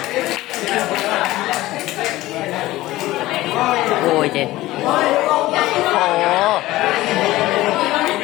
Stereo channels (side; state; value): right; quieter; 17.3 dB